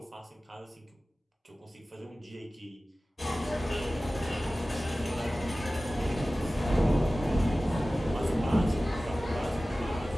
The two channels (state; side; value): normal; both; correlation 0.97